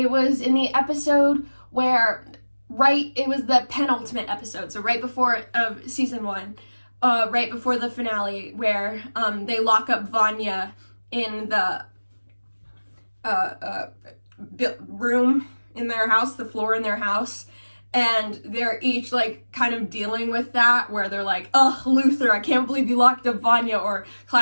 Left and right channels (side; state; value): both; inverted; correlation -1.00